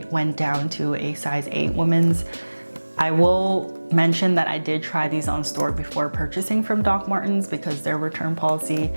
went down to a size 8 women's. I will mention that I did try these on store before purchasing from Doc Martens because their return policy,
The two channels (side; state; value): both; inverted; correlation -1.00